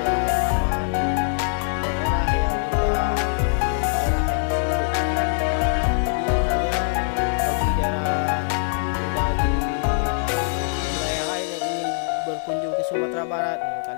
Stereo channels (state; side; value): silent; right; 63 dB below the other